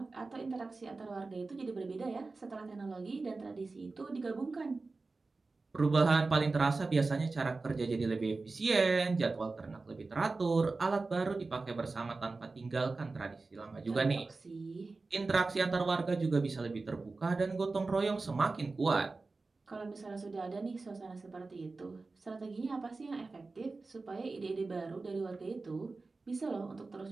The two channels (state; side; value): quieter; left; 3.7 dB